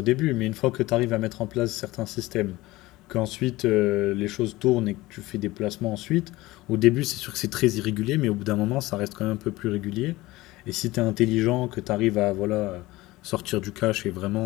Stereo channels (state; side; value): quieter; right; 19.1 dB